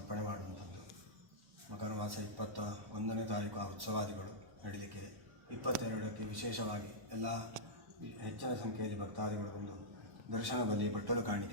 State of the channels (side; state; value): left; late; 1.1 ms